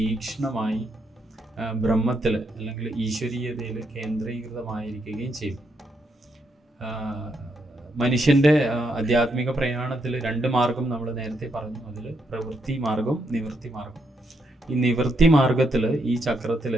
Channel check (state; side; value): normal; both; correlation 0.79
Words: ബ്രഹ്മത്തിൽ അല്ലെങ്കിൽ ഈശ്വരീയതയിൽ കേന്ദ്രീകൃതമായിരിക്കുകയും ചെയ്യും. മനുഷ്യൻ്റെ ആധ്യാത്മിക പ്രയാണത്തിൽ 2 മാർഗം നമ്മൾ നേരത്തെ പറഞ്ഞു. അതിൽ പ്രവൃത്തി മാർഗം, നിവൃത്തി മാർഗം. ഈ നിവൃത്തി മാർഗത്തിൽ ഈ ചക്രത്തിൽ